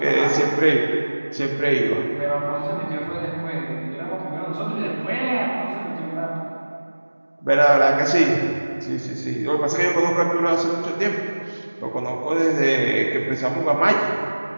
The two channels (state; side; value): inverted; both; correlation -1.00